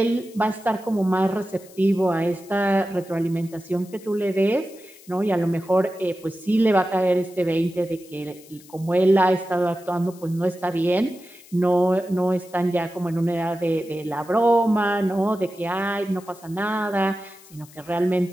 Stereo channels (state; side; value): noise; left; hiss, 23 dB below the sound